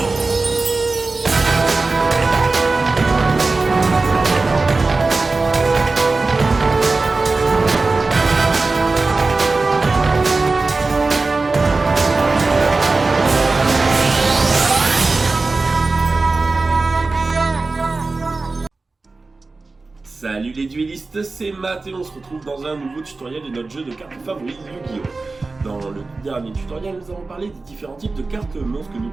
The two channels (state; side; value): quieter; left; 3.7 dB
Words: Salut les duellistes, c'est Matt et on se retrouve dans un nouveau tutoriel de notre jeu de cartes favori Yu-Gi-Oh! Dans le dernier tutoriel, nous avons parlé des différents types de cartes monstres que nous